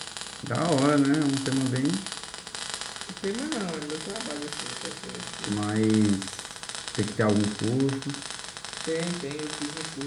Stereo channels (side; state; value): both; identical; correlation 1.00